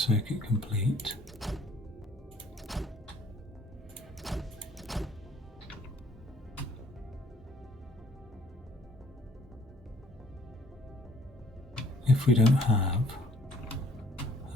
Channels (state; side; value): normal; both; correlation 0.59